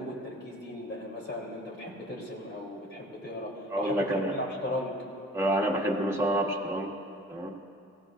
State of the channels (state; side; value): normal; both; correlation 0.47